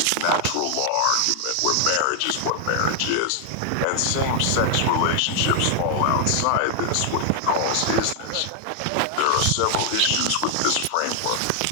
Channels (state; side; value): different; both; correlation 0.00